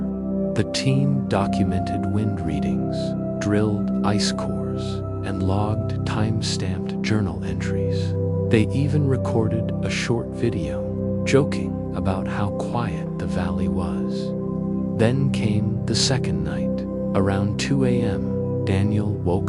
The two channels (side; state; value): both; identical; correlation 1.00